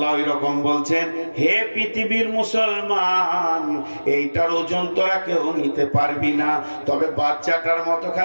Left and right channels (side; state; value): both; inverted; correlation -1.00